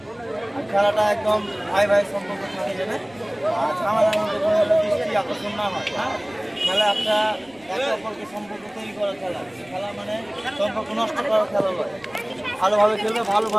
আর খেলাটা একদম ভাই ভাই সম্পর্ক থাকে যাবে, আর ঝামেলার মধ্যে কোনো দৃষ্টি আকর্ষণ না হয়। হ্যাঁ, খেলা একটা একে অপরকে সম্পর্ক তৈরি করার খেলা, খেলা মানে সম্পর্ক নষ্ট করার খেলা নয়। ভালোভাবে খেলবে,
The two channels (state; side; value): noise; right; rumble, 29 dB below the sound